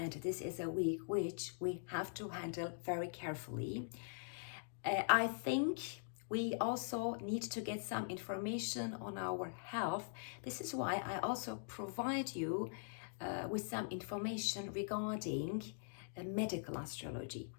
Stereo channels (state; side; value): silent; right; digital silence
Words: this is a week which we have to handle very carefully. I think we also need to get some information on our health. This is why I also provide you with some information regarding medical astrology.